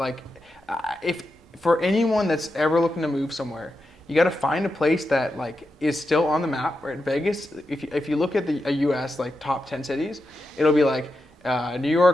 if for anyone that's ever looking to move somewhere, you got to find a place that is still on the map. Right, Vegas. If you look at the U.S. top 10 cities, it'll be New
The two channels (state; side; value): normal; both; correlation 0.88